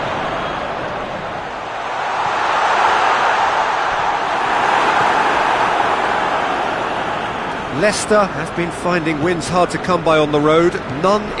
Leicester have been finding wins hard to come by on the road, none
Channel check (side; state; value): both; identical; correlation 1.00